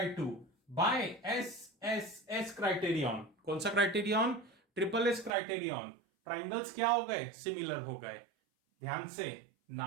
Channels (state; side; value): drops out; left; at 5.3 s